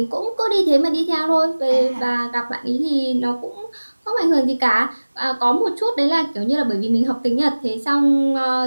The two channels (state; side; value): inverted; both; correlation -1.00